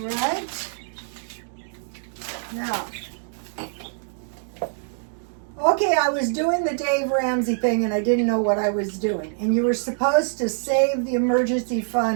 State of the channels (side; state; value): left; silent; digital silence